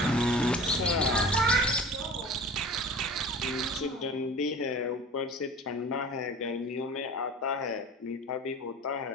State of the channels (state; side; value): normal; both; correlation 0.38